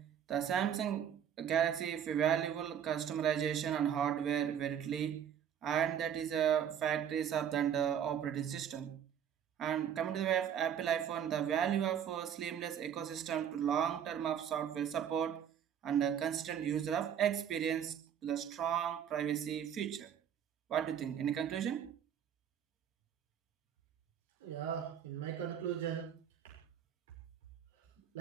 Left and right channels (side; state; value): left; quieter; 9.0 dB